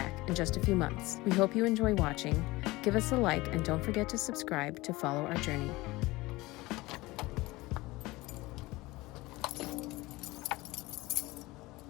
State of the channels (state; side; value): quieter; right; 20.7 dB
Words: in just a few months. We hope you enjoy watching. Give us a like and don't forget to subscribe to follow our journey.